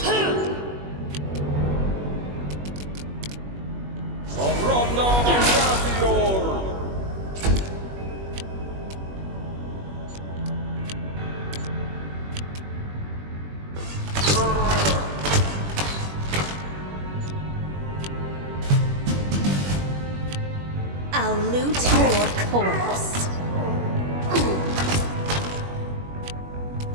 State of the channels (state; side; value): late; left; 21 ms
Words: Afronda Gratior! I'll loot your corpse.